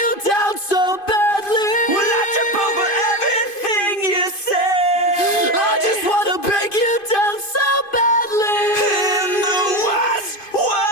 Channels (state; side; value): late; right; 2.5 ms